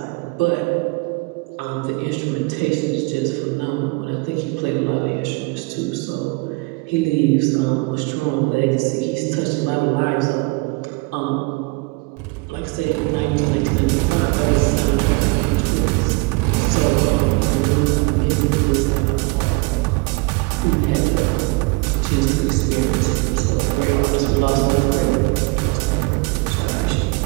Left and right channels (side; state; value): left; quieter; 27.2 dB